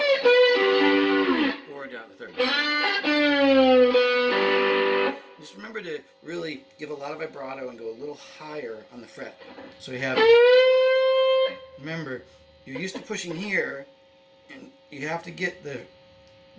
or down the 3rd. Just remember to really give a lot of vibrato and go a little higher on the fret. So we have, remember, you're used to pushing here, and you have to get the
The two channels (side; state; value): both; identical; correlation 1.00